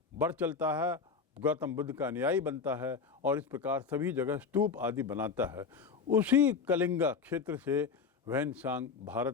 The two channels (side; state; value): right; quieter; 5.4 dB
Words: बढ़ चलता है, गौतम बुद्ध का अनुयायी बनता है, और इस प्रकार सभी जगह स्तूप आदि बनाता है। उसी कलिंगा क्षेत्र से वेनसांग